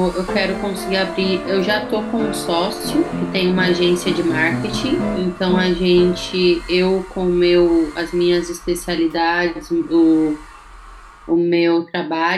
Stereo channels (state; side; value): identical; both; correlation 1.00